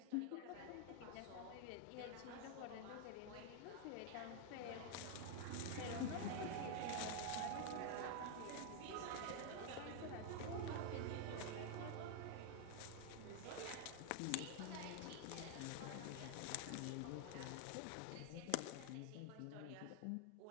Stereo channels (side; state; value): both; different; correlation 0.00